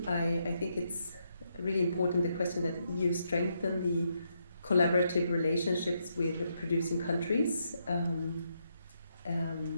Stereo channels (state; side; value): inverted; both; correlation -0.79